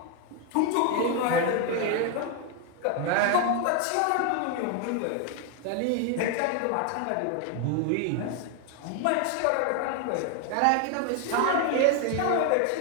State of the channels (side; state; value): both; different; correlation 0.01